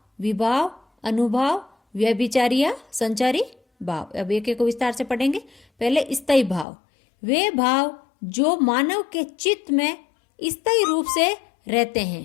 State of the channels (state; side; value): drops out; right; at 6.7 s